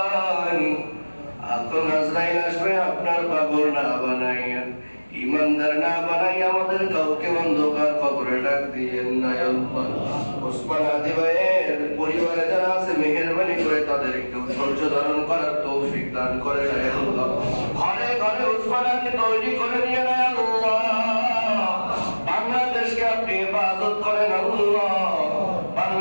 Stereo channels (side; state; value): both; inverted; correlation -1.00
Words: এখন আজরাইল আসবে আপনার পাগল না বানাইয়া, ইমানদার না বানাই আমাদের কাউকে অন্ধকার কবরে ডাক দিয়েন না আল্লাহ। ওসমান আদি ভাইয়ের পরিবারে যারা আছে মেহেরবানি করে তাদেরকে ধৈর্য ধারণ করার তৌফিক দান করে আল্লাহ। ঘরে ঘরে ওসমান আদি তৈরি করে দিয়ে না আল্লাহ। বাংলাদেশকে আপনি হেফাজত করেন আল্লাহ,